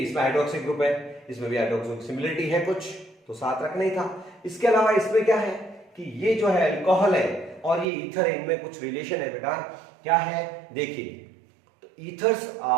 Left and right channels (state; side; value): drops out; left; at 7.9 s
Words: हाइड्रोक्सी ग्रुप है, इसमें भी हाइड्रोक्सी सिमिलरिटी है कुछ, तो साथ रखना ही था। इसके अलावा इसमें क्या है कि ये जो है अल्कोहल है और ये ईथर है, इनमें कुछ रिलेशन है बेटा। क्या है? देखिए ethers